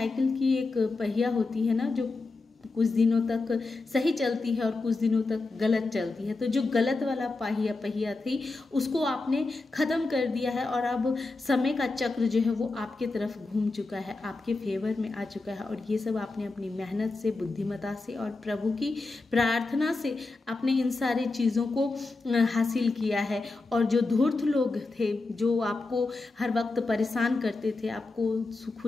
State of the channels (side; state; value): right; quieter; 3.5 dB